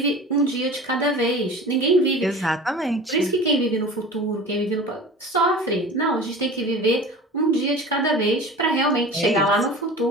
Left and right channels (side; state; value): both; normal; correlation 0.37